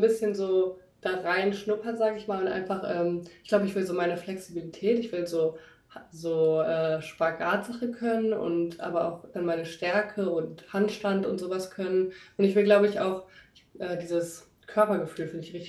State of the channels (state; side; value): identical; both; correlation 1.00